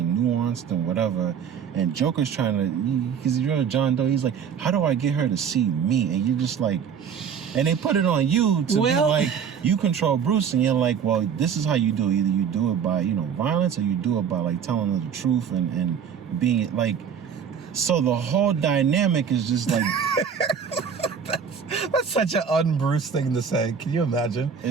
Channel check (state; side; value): quieter; left; 7.3 dB